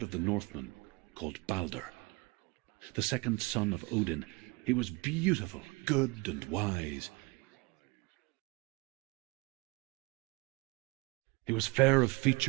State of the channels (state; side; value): quieter; left; 24.8 dB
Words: of the Northmen called Balder. The second son of Odin, he was beautiful, good, and wise. He was fair of